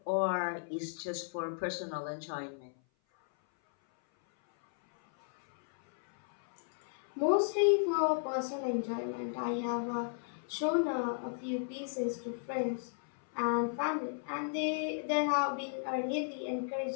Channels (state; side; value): silent; right; 55 dB below the other